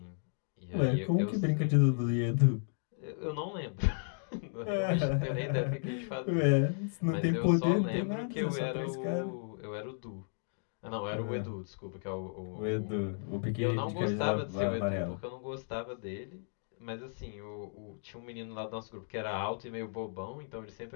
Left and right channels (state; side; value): silent; right; digital silence